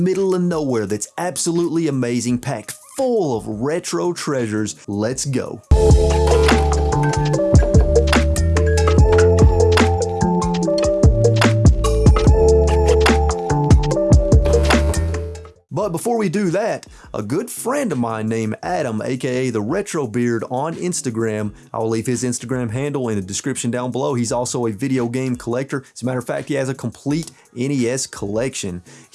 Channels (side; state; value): both; identical; correlation 1.00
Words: of nowhere that's absolutely amazing, packed full of retro treasures. Let's go. But before we do that, a good friend of mine named Adam, aka the Retro Beard on Instagram, I'll leave his Instagram handle in the description down below. He's also a video game collector. As a matter of fact, he has a complete NES collection.